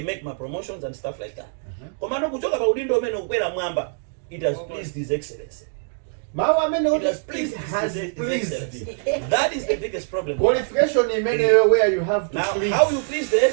make my promotions and stuff like that. It has pleased His Excellency. It has pleased His Excellency. That is the biggest problem. Qualification in many where you have to now, please. how you please the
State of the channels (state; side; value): silent; left; 63 dB below the other